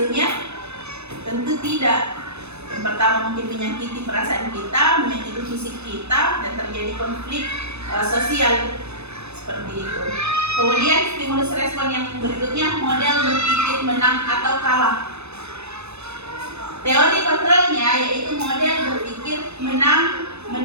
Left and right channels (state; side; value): late; left; 0.80 ms